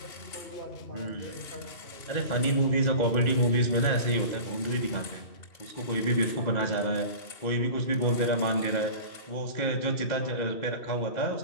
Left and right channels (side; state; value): right; late; 2.0 ms